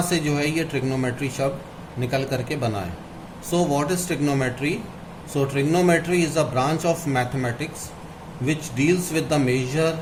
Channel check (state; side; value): identical; both; correlation 1.00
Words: से जो है ये ट्रिग्नोमेट्री शब्द निकल करके बना है। So what is trigonometry? So trigonometry is a branch of mathematics which deals with the